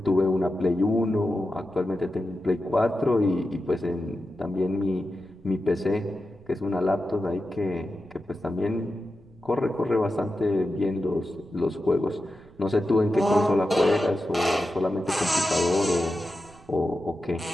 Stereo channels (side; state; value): right; noise; rumble, 27 dB below the sound